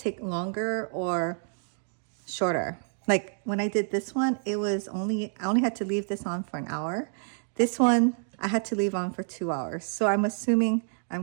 longer or shorter. Like when I did this one, I only had to leave this on for an hour. This one I had to leave on for 2 hours, so I'm assuming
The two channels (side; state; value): left; silent; 59 dB below the other